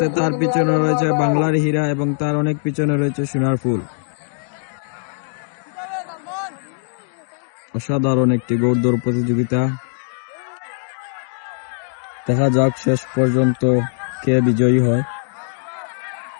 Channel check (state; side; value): silent; right; 58 dB below the other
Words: তার পিছনে রয়েছে বাংলার হীরা এবং তার অনেক পিছনে রয়েছে সোনার ফুল। অসাধারণ একটি ঘোড়দৌড় প্রতিযোগিতা। দেখা যাক শেষ পর্যন্ত কে বিজয়ী হয়।